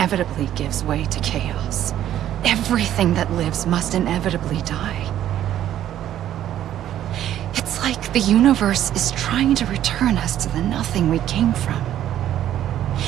gives way to chaos. Everything that lives must inevitably die. It's like the universe is trying to return us to the nothing we came from.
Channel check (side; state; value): left; quieter; 11.7 dB